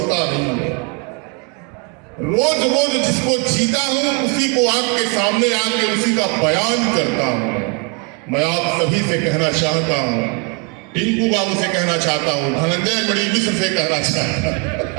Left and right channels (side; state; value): left; quieter; 33.2 dB